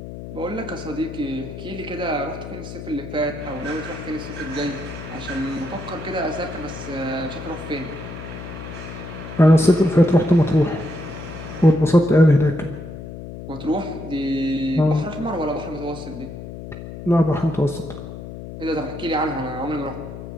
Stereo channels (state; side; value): noise; left; hum, 11 dB below the sound